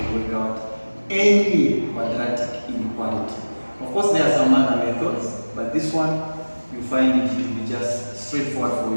work out any quadratic inequality. Of course, there are some other methods, but this one you find it to be just straightforward for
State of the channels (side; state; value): both; inverted; correlation -1.00